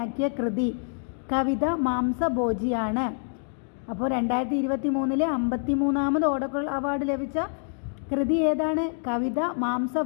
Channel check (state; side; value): silent; right; 61 dB below the other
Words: കൃതി കവിത മാംസഭോജിയാണ്. അപ്പോൾ 2023 53ാമത് ഓടക്കുഴൽ അവാർഡ് ലഭിച്ച കൃതി ഏതാണ്? കവിത